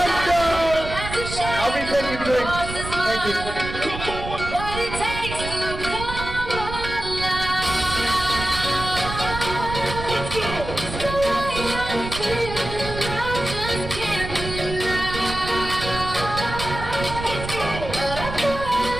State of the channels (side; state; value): right; noise; rumble, 8 dB below the sound